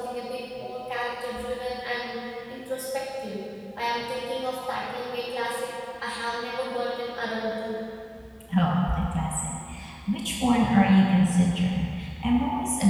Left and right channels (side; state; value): both; identical; correlation 1.00